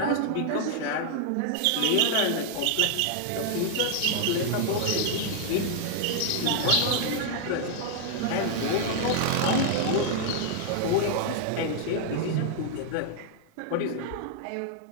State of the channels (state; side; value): different; both; correlation 0.00